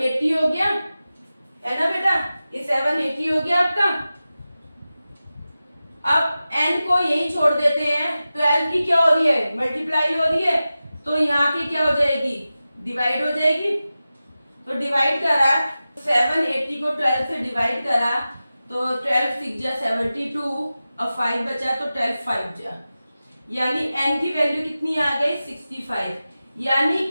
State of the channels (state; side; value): inverted; both; correlation -0.95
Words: हो गया, है ना बेटा, ये 780 हो गया आपका। अब n को यही छोड़ देते हैं, 12 की क्या हो रही है मल्टीप्लाई हो रही है, तो यहाँ की क्या हो जाएगी डिवाइड हो जाएगी, तो डिवाइड करा 780 को 12 से डिवाइड करा तो 12 6 जा 72, अब 5 बचा तो 12 5 जा, यानी n की वैल्यू कितनी आ गई 65, यानी